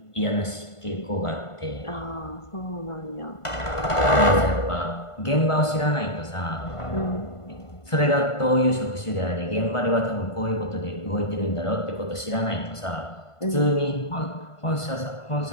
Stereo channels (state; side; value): late; right; 1.5 ms